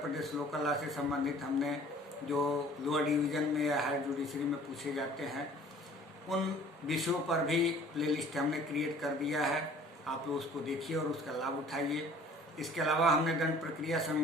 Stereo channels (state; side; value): normal; both; correlation 0.51